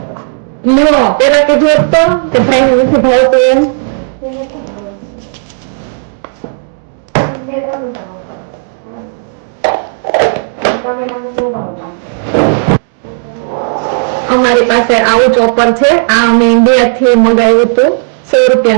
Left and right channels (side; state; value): left; silent; digital silence